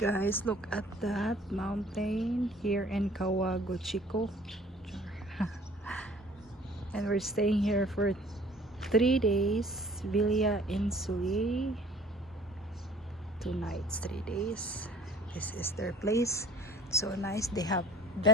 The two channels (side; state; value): both; normal; correlation 0.52